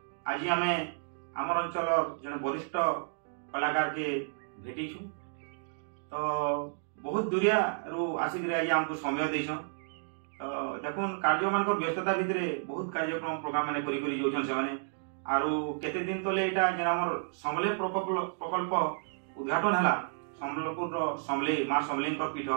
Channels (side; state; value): left; silent; digital silence